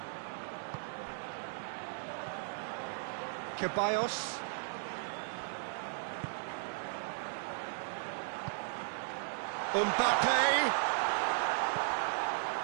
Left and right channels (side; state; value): left; silent; digital silence